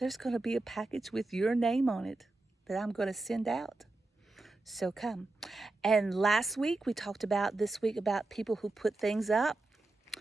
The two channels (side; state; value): left; quieter; 3.1 dB